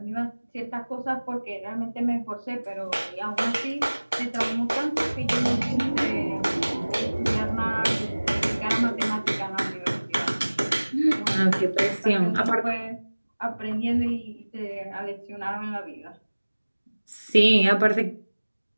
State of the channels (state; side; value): inverted; both; correlation -1.00